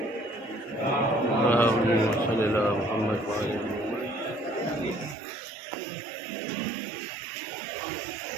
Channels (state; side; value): drops out; left; at 5.2 s